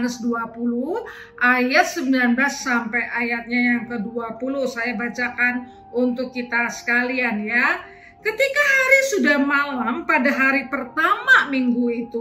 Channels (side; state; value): both; identical; correlation 1.00